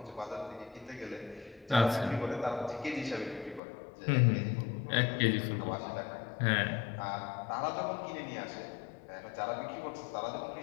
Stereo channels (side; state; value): right; drops out; at 3.6 s